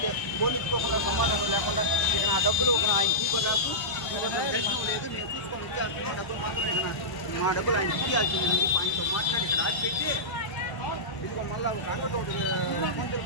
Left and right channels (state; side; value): late; right; 1.0 ms